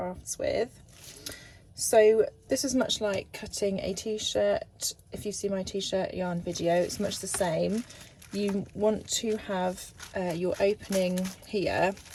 with. So this is much like cutting a t-shirt. If you see my t-shirt yarn video, it's much the same. You want to have your opening here,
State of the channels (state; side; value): identical; both; correlation 1.00